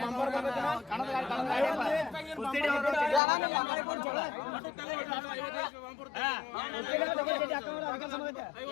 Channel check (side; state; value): right; drops out; at 3.2 s